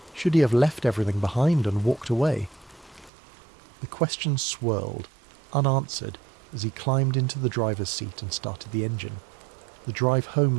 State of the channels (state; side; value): drops out; left; at 3.1 s